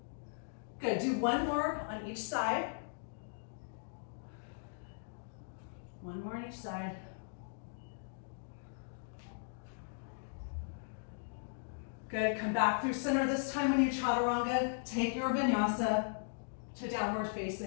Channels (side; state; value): right; silent; digital silence